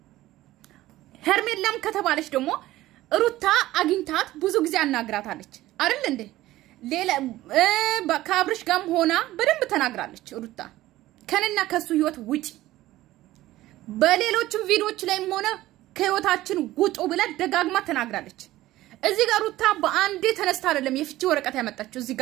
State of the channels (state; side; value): quieter; left; 16.0 dB